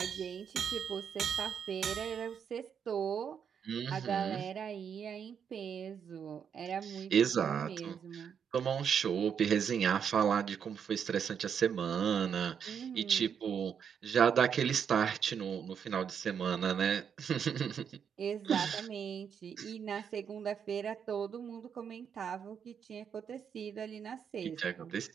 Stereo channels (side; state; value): left; quieter; 7.5 dB